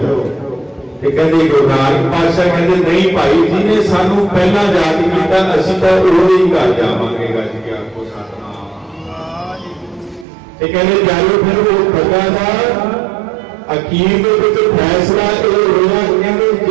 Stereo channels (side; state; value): left; drops out; at 10.2 s